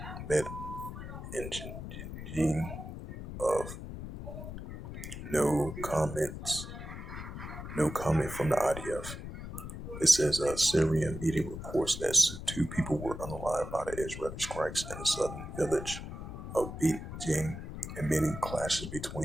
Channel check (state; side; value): noise; left; rumble, 9 dB below the sound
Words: Bet in Jin of no comment from the IDF. It says Syrian media reports that 2 people were unalive by the Israeli strikes in the southern village of Bet Jin, admitting clashes